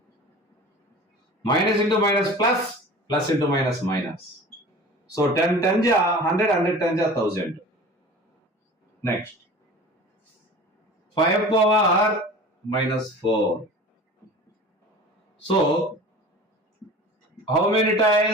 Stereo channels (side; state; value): both; normal; correlation 0.39